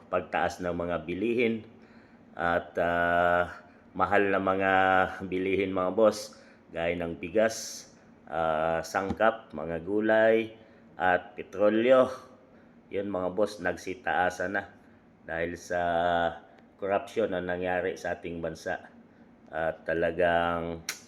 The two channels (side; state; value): both; identical; correlation 1.00